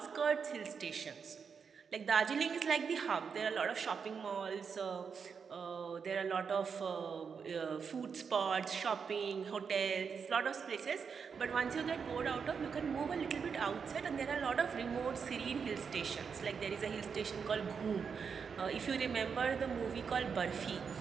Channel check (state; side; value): quieter; left; 6.1 dB